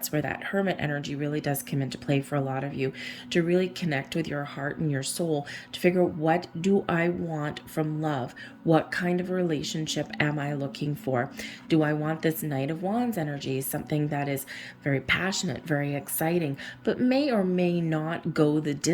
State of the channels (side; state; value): both; identical; correlation 1.00